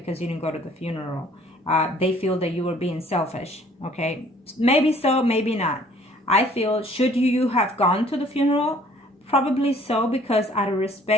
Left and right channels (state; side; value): normal; both; correlation 0.57